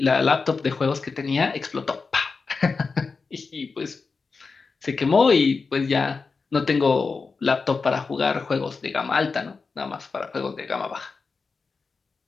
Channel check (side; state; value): right; quieter; 4.6 dB